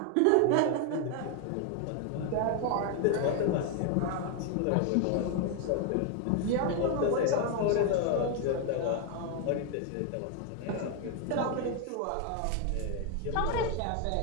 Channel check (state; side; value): different; both; correlation 0.01